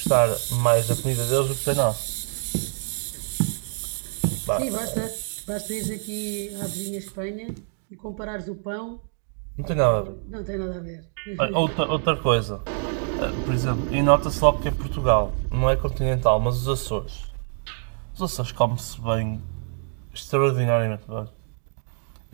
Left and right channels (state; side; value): silent; left; digital silence